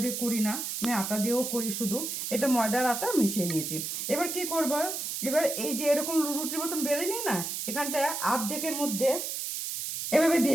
দিয়ে করি না, আমি আটা দিয়েও করি শুধু। এটা ময়দার আটা মিশিয়ে নিয়েছি। এবার কি করবো, এবার এই যে এরকম রুটির মতন বেলে নিই না, এখানটায় অর্ধেকের মধ্যে এভাবে দিয়ে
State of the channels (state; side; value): noise; right; hiss, 4 dB below the sound